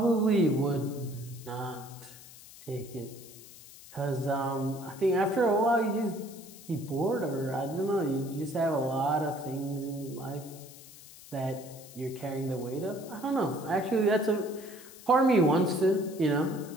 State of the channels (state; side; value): noise; left; hiss, 19 dB below the sound